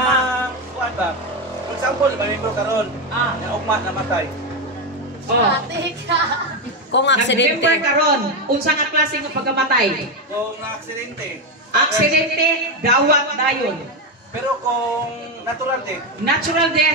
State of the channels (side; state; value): both; normal; correlation 0.10